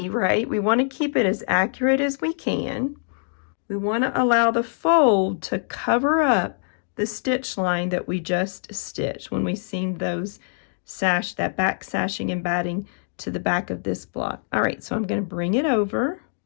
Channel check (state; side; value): silent; right; digital silence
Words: right? We want to keep it as accurate as we can. We want to allow the fold to cover up the stitch line that we just stitched when we seamed those that back sashing and batting to the back of this block. All right, so I'm going to bring it over.